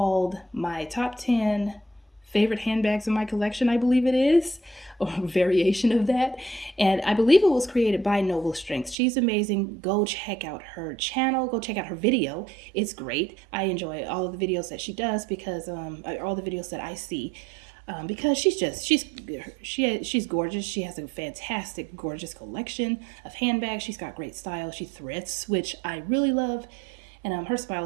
my top 10 favorite handbags in my collection, I believe it is, or a variation of that. And I believe it was created by Noble Strength. She's amazing. Go check out her channel. Go check out her video. It's great. I enjoy all of the videos that she does because all the videos that I see. Because she's gorgeous. She has a fantastic, gorgeous collection of handbags. She's got great style. She thrifts, which I really love. And her smile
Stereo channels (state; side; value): drops out; left; at 9.0 s